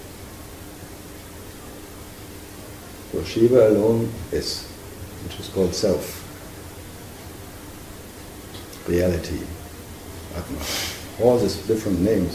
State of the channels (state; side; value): identical; both; correlation 1.00